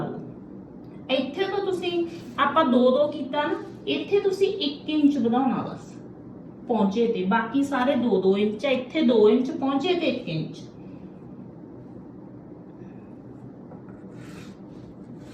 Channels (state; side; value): identical; both; correlation 1.00